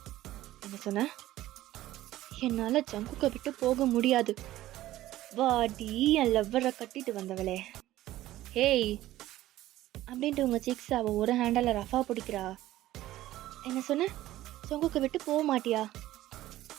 என்ன சொன்ன? என்னால் ஜங்குக்கை விட்டு போக முடியாது. வாடி, என் லவ்வரை கட்டிட்டு வந்தவளே. ஹேய் அப்படின்ட்டு உங்கள் சிக்ஸ் அவள் ஒரு ஹேண்டில் ரஃபா பிடிக்கிறா. என்ன சொன்ன? ஜங்குக்கை விட்டு போக மாட்டியா?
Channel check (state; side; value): quieter; left; 15.1 dB